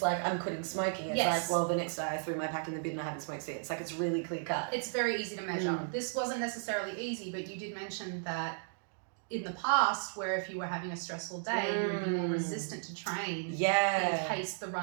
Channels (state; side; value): silent; left; digital silence